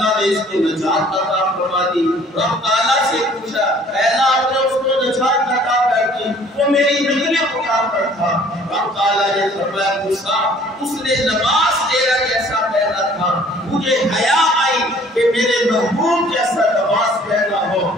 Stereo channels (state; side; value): normal; both; correlation 0.55